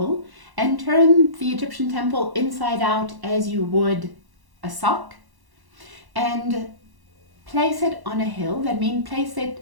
and turn the Egyptian temple inside out as you would a sock, and place it on a hill, that means place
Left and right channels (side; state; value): left; late; 1.1 ms